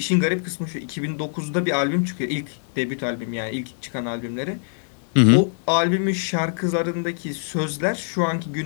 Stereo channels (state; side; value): silent; right; 60 dB below the other